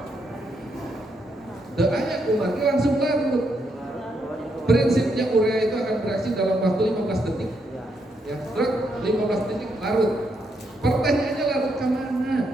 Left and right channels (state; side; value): normal; both; correlation 0.78